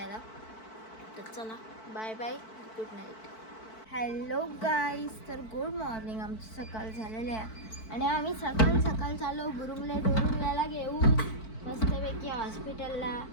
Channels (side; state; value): right; late; 4.5 ms